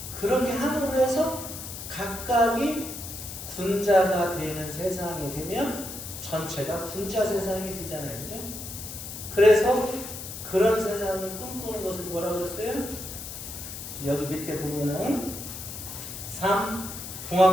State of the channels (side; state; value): left; noise; hiss, 9 dB below the sound